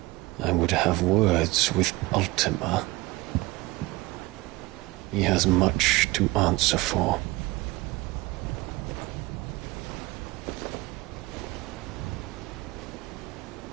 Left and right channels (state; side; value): quieter; left; 21.4 dB